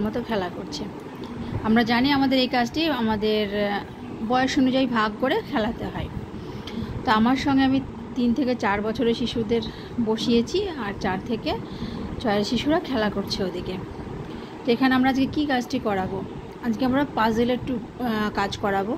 মতো খেলা করছে। আমরা জানি আমাদের এই কাজটি আমাদের বয়স অনুযায়ী ভাগ করে খেলাতে হয়। তো আমার সঙ্গে আমি 3 থেকে 4 বছরের শিশুদের বসিয়েছি আর 4 থেকে 6 শিশুরা খেলা করছে ওদিকে। তো এখানে আমরা আজকে কী কাজটি করাবো, আজকে আমরা পাজেলের কাজ করাবো।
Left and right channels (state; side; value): identical; both; correlation 1.00